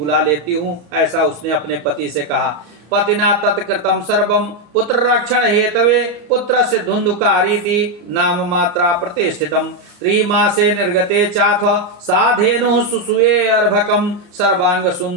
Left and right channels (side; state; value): left; late; 34 ms